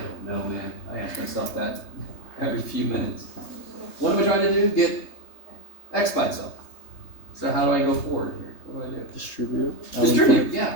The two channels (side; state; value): right; late; 3.3 ms